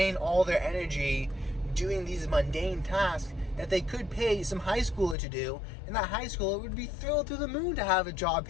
all their energy doing these mundane tasks that they could pay some high schooler to do, and that high schooler would be thrilled to the moon to have a job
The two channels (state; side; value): drops out; right; at 5.2 s